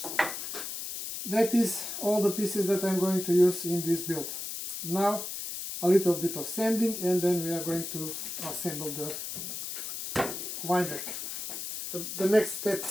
That is all the pieces that I'm going to use in this build. Now a little bit of sanding and then we are going to assemble the wine rack. The next step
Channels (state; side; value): noise; left; hiss, 6 dB below the sound